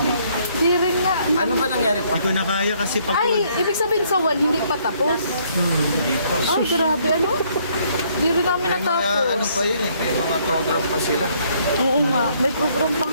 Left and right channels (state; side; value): inverted; both; correlation -0.67